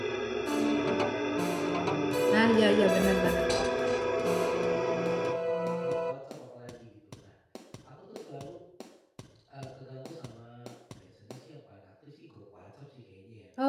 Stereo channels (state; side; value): identical; both; correlation 1.00